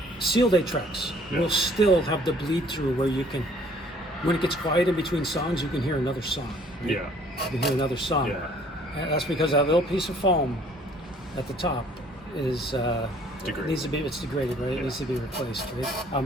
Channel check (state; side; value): normal; both; correlation 0.58